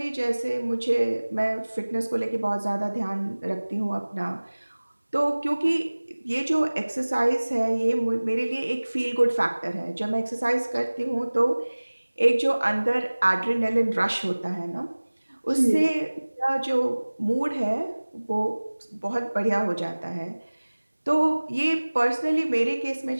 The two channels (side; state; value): both; inverted; correlation -1.00